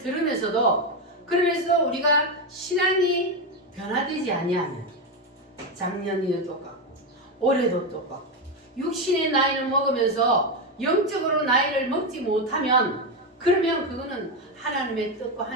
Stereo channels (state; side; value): normal; both; correlation 0.10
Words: 그러면서 우리가 신앙이 변화되지 아니하면 작년에도 똑같고 올해도 똑같고 육신의 나이를 먹으면서 영적으로 나이를 먹지 못하면 그러면 그거는 하나님의 뜻과